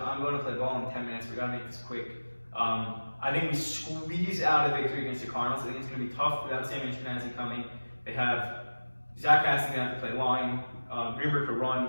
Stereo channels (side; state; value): both; inverted; correlation -1.00